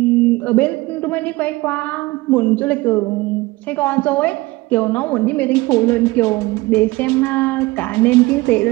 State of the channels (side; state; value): left; quieter; 21.1 dB